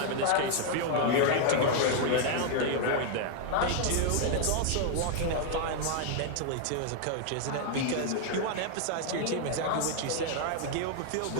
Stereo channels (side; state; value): both; different; correlation 0.00